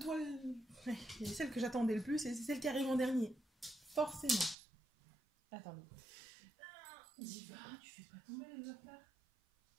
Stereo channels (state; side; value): drops out; left; at 4.5 s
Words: c'est celle que j'attendais le plus et c'est celle qui arrive en dernier. Forcément. Attendez. Diva, tu fais pas tomber les affaires.